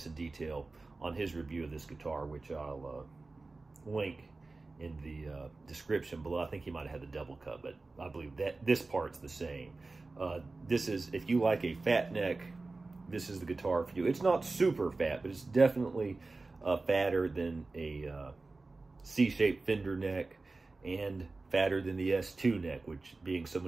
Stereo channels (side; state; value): left; quieter; 3.5 dB